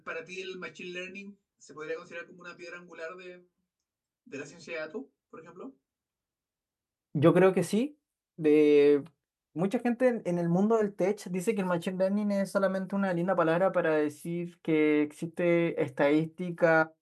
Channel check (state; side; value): identical; both; correlation 1.00